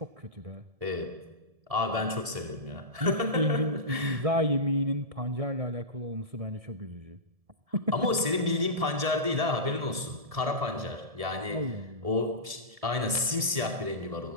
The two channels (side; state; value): left; late; 1.7 ms